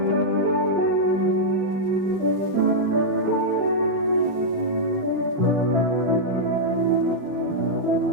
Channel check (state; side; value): late; left; 6.7 ms